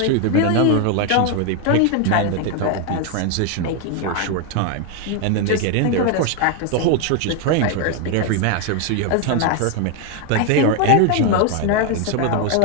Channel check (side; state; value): both; different; correlation 0.01